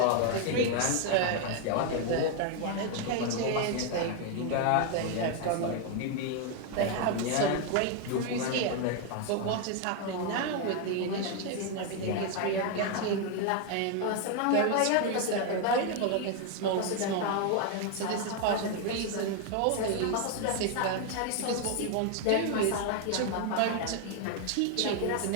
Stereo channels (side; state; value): both; different; correlation 0.01